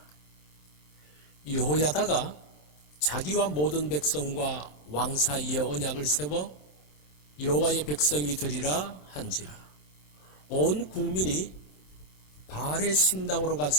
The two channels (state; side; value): late; right; 27 ms